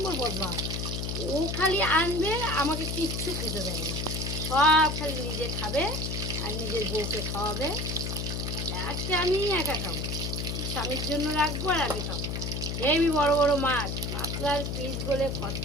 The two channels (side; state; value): left; noise; hum, 3 dB below the sound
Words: বদমাস। ও খালি আনবে, আমাকে কিচ্ছু খেতে দেয় না। সব খালি নিজে খাবে আর নিজের বউকে খাওয়াবে। আজকে আমি একা খাবো, স্বামীর জন্য রাখবো আর আমি খাবো। হেবি বড় বড় মাছ, পাতলার পিস বলে